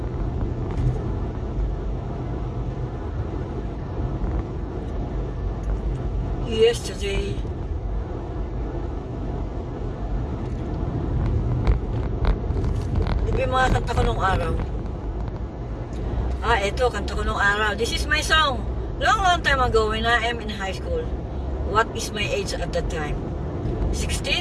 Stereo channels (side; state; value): both; identical; correlation 1.00